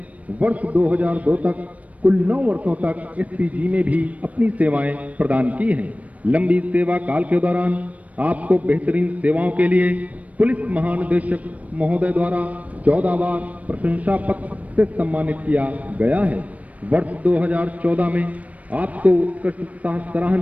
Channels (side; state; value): left; late; 0.069 ms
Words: वर्ष 2002 तक कुल 9 वर्षों तक एसपीजी में भी अपनी सेवाएं प्रदान की हैं। लंबी सेवा काल के दौरान आपको बेहतरीन सेवाओं के लिए पुलिस महानिदेशक महोदय द्वारा 14 बार प्रशंसा पत्र से सम्मानित किया गया है। वर्ष 2014 में आपको उत्कृष्ट